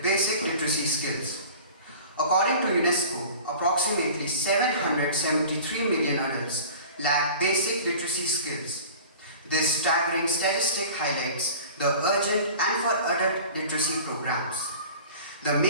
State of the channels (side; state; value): both; inverted; correlation -0.41